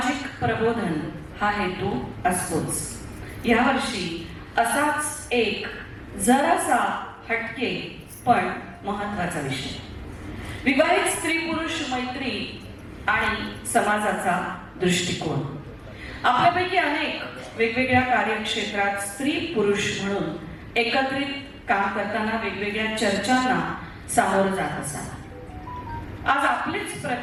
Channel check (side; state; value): both; identical; correlation 1.00